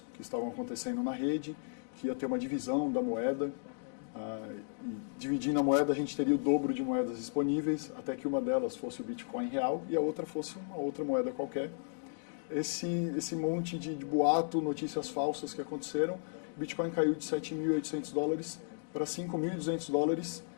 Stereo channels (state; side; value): silent; right; digital silence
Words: que estavam acontecendo na rede, que ia ter uma divisão da moeda. E dividindo a moeda, a gente teria o dobro de moedas disponíveis, até que uma delas fosse o Bitcoin real e a outra fosse uma outra moeda qualquer. Esse monte de boato, notícias falsas que aconteceram, o Bitcoin caiu de $7.800 para $5.200